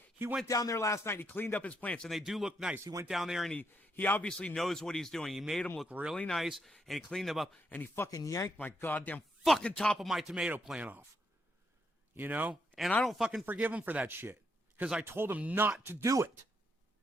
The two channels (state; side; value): normal; both; correlation 0.78